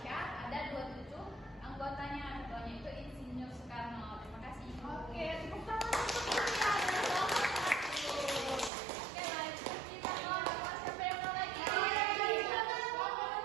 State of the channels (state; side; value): drops out; left; at 8.7 s